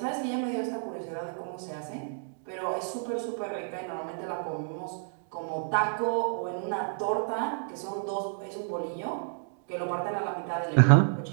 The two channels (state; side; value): silent; left; digital silence